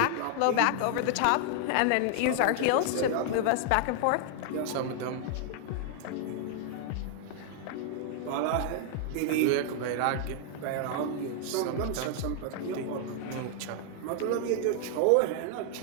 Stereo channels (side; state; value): both; different; correlation 0.00